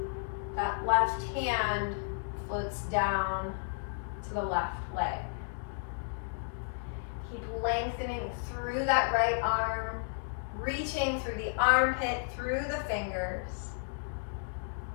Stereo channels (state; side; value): silent; right; digital silence